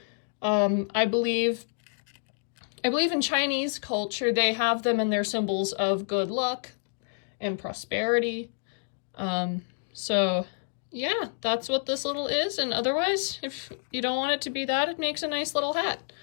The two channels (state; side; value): silent; right; digital silence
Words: I believe in Chinese culture, they have them in their symbols of good luck and prosperity. So yeah, that's what this little is. And otherwise, if you don't want it to be that, it makes a nice little hat.